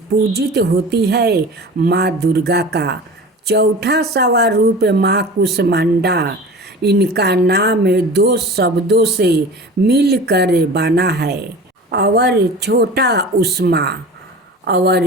पूजित होती है माँ दुर्गा का चौथा स्वरूप माँ कुसमांडा। इनका नाम दो शब्दों से मिलकर बना है और छोटा उष्मा और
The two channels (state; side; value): normal; both; correlation 0.37